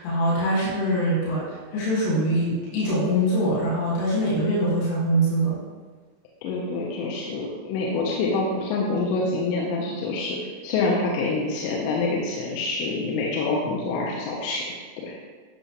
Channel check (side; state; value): right; late; 33 ms